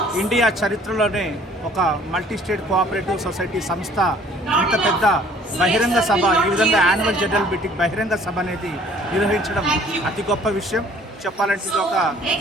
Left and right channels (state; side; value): normal; both; correlation 0.56